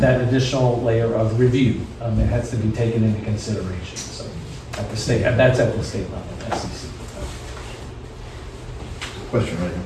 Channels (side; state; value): both; identical; correlation 1.00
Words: additional layer of review. It has to be taken into consideration, so, at the state, that's at the state level, SEC. Question right in